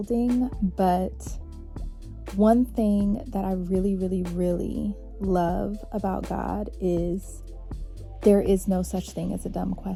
but one thing that I really, really, really love about God is there is no such thing as a dumb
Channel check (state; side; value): identical; both; correlation 1.00